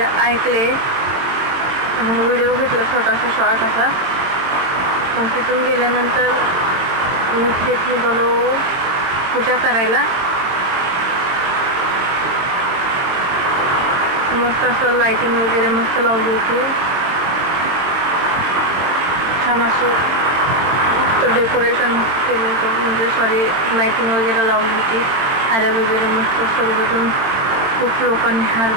ऐकले. मग व्हिडिओ घेतला छोटासा शॉर्ट असा. मग तिथून गेल्यानंतर नीट निघालो पूजा करायला. मस्त असं लाइटिंग वगैरे मस्त लावली होती. छान असं मस्त डेकोरेशन केलं होतं, म्हणजे लाइटिंग वगैरे लावली होती. हार वगैरे मस्त सर्वजण खूप लोकांनी हार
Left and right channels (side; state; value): left; late; 22 ms